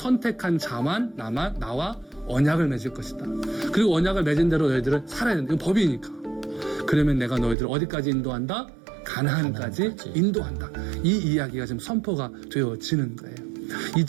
자만 나와 언약을 맺을 것이다. 그리고 언약을 맺은 대로 너희들은 살아야 된다. 이건 법이니까. 그러면 내가 너희들을 어디까지 인도한다? 가나안까지 인도한다. 이 이야기가 지금 선포가 되어지는 거예요.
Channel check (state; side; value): drops out; left; at 7.6 s